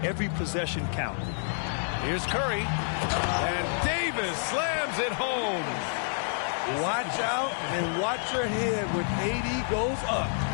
every possession count. Here's Curry. And Davis slams it home. Watch out and watch your head when AD goes up.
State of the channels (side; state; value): right; silent; digital silence